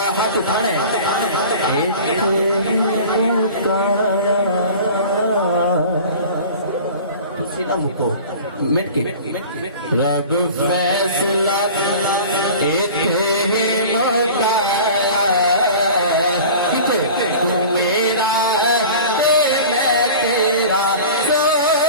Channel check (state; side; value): inverted; both; correlation -0.39